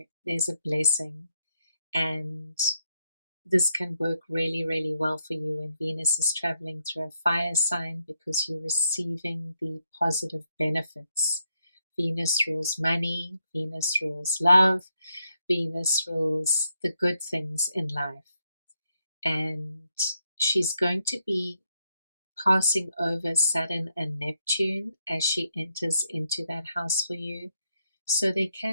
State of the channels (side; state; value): both; inverted; correlation -0.79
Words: there's a blessing. And this can work really, really well for you when Venus is traveling through a fire sign, because you're receiving the positive benefits. Venus rules money, Venus rules love, Venus rules the good things in life. And she's going to be passing over Saturn and Neptune as she enters into that house for you. So there